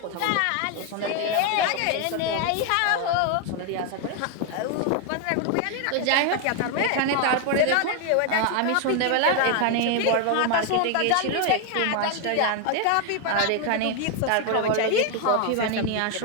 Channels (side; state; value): both; different; correlation 0.01